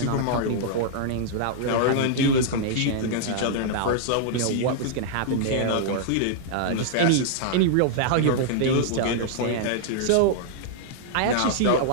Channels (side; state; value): both; different; correlation -0.01